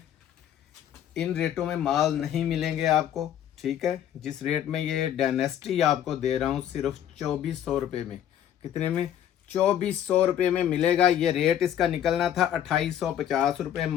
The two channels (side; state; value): right; quieter; 10.4 dB